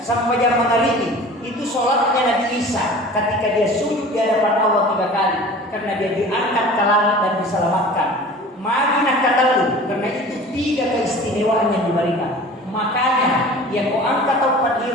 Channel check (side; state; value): both; normal; correlation 0.41